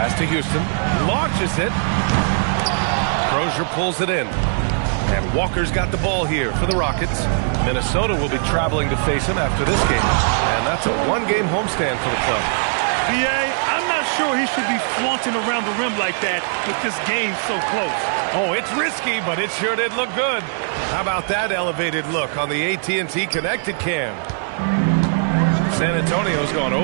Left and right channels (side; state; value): left; silent; digital silence